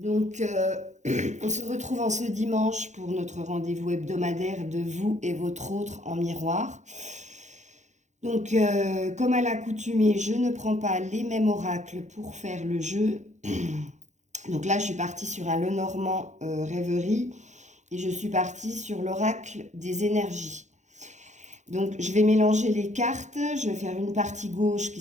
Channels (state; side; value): late; left; 0.34 ms